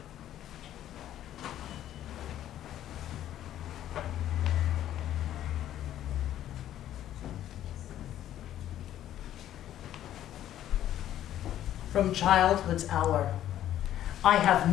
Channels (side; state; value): right; quieter; 12.0 dB